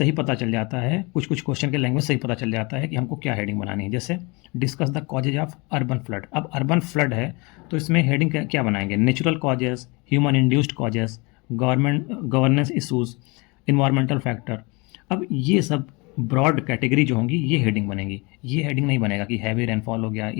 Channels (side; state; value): right; quieter; 27.7 dB